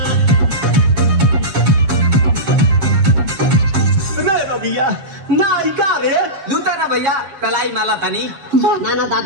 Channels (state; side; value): late; left; 7.4 ms